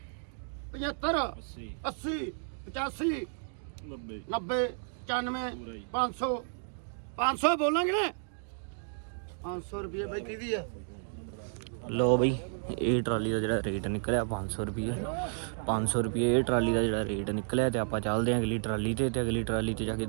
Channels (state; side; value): silent; left; digital silence